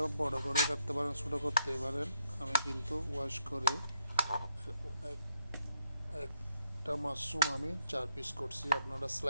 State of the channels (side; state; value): both; inverted; correlation -0.77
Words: বড় করে কাটতে পারেন, ছোটো করতে পারেন। আমি কিন্তু ওয়াশ করে একটা মাশরুম আমি 4 পিস করছি। আপনারা